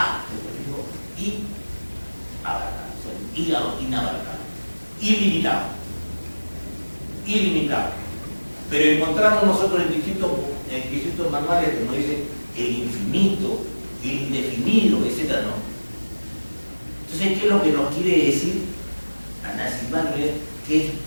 y abarcable, inabarcable, ilimitado. Pero encontramos nosotros en distintos manuales que nos dicen el infinito, el indefinido, etc. No. Entonces, ¿qué es lo que nos quiere decir Anaximandro? Que es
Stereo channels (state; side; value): inverted; both; correlation -1.00